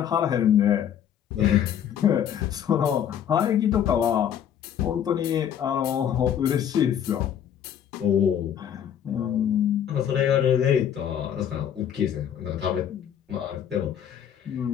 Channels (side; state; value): right; quieter; 9.4 dB